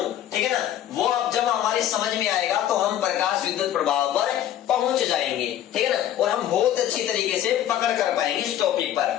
ठीक है ना। वो अब जब हमारे समझ में आएगा तो हम प्रकाश विद्युत प्रभाव पर पहुंच जाएंगे, ठीक है ना, और हम बहुत अच्छी तरीके से पकड़ कर पाएंगे इस टॉपिक पर।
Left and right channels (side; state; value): right; quieter; 11.5 dB